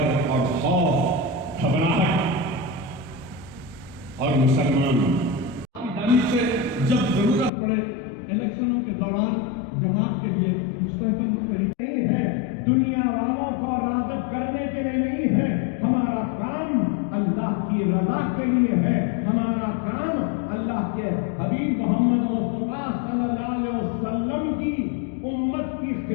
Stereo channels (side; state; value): right; drops out; at 7.5 s